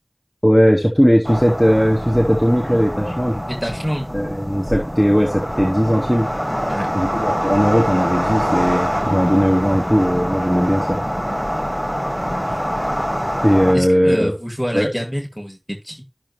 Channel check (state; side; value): identical; both; correlation 1.00